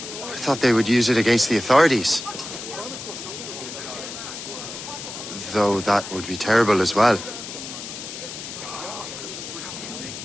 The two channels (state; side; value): noise; left; hiss, 9 dB below the sound